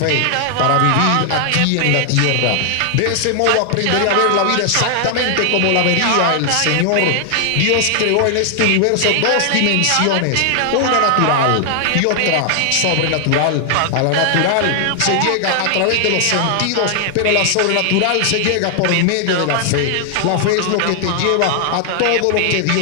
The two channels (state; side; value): different; both; correlation 0.00